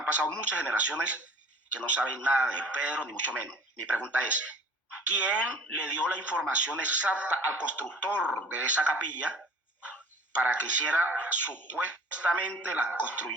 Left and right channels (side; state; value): both; normal; correlation 0.47